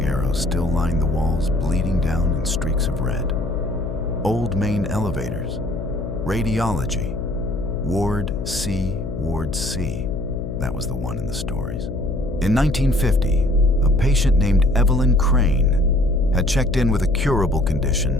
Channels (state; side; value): noise; left; hum, 7 dB below the sound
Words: arrows still lined the walls, bleeding down in streaks of red. Old main elevators. Radiology. Ward C, Ward C. That was the one in the stories. In 1950, a patient named Evelyn Crane had checked in with a curable